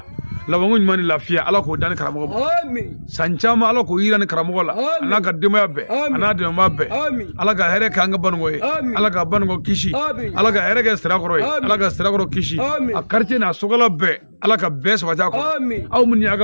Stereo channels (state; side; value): inverted; both; correlation -1.00